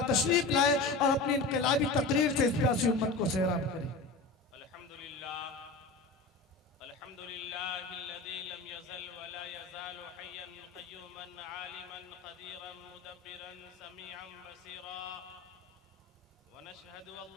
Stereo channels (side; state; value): right; quieter; 3.5 dB